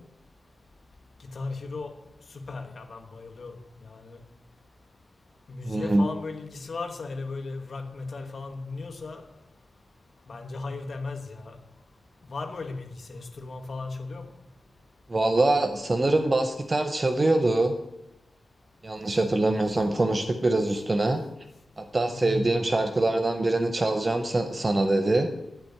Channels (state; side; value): normal; both; correlation 0.95